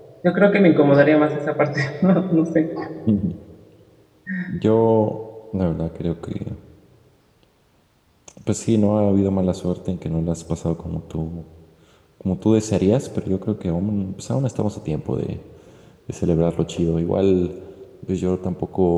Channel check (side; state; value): both; identical; correlation 1.00